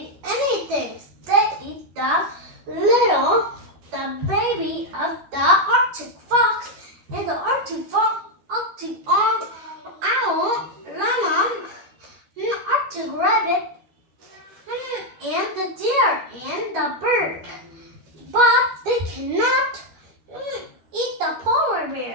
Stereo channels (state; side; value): late; left; 13 ms